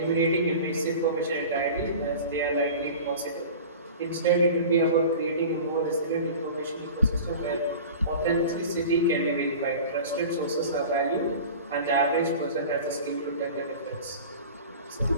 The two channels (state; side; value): inverted; both; correlation -0.37